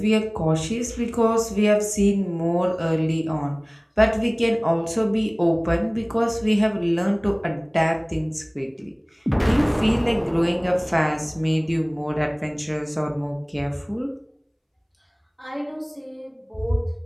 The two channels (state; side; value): identical; both; correlation 1.00